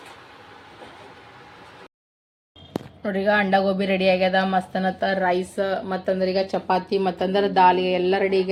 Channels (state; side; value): identical; both; correlation 1.00